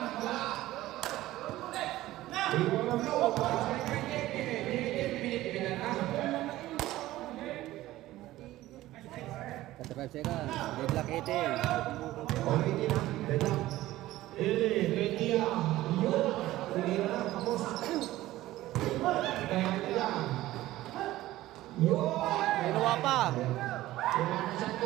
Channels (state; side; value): quieter; left; 16.0 dB